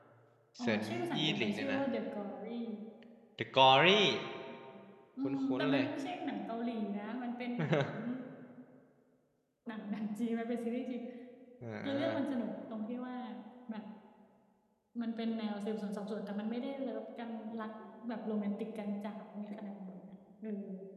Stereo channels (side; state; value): both; identical; correlation 1.00